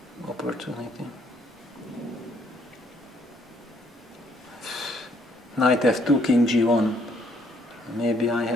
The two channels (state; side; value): normal; both; correlation 0.67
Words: opportunity. Knight f2, king g1. Maybe I